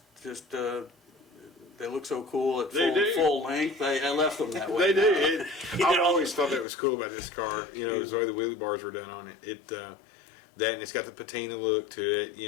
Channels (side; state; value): right; drops out; at 6.7 s